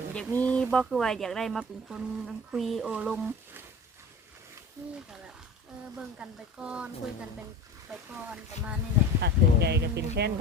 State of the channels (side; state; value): both; normal; correlation 0.36